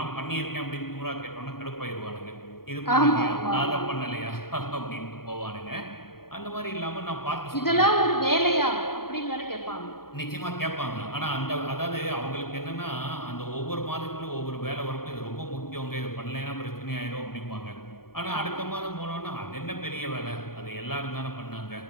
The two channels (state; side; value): late; right; 0.93 ms